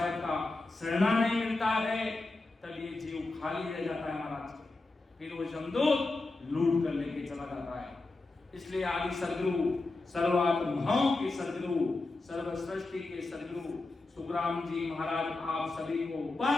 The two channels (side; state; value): right; quieter; 3.2 dB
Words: का शरणा नहीं मिलता है, तब ये जीव खाली रह जाता है। महाराज के फिर वो जमदूत लूट कर लेके चला जाता है। इसलिए आदि सदगुरु, सर्वात्माओं के सदगुरु, सर्व सृष्टि के सदगुरु सुखराम जी महाराज आप सभी को